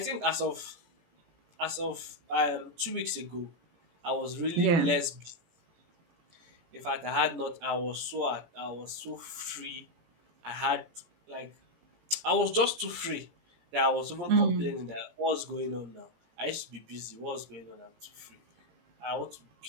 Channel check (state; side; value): late; left; 17 ms